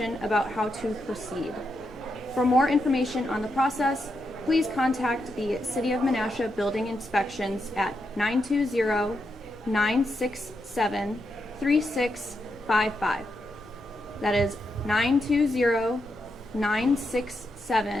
about how to proceed. For more information on the process, please contact the City of Menasha Building Inspections at 920-967-3655. That is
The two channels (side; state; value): left; noise; rumble, 29 dB below the sound